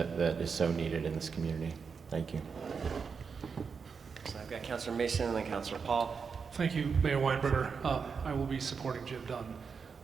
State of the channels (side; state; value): left; quieter; 5.7 dB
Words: is so needed in this community. Thank you. So I've got Councilor Mason and then Councilor Paul. Thank you, Mayor Weinberger. I will be supporting Jim Dunn,